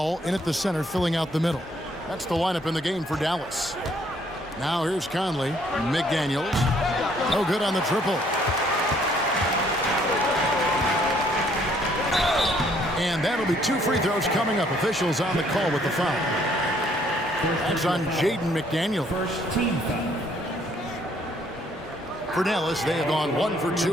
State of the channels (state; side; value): normal; both; correlation 0.65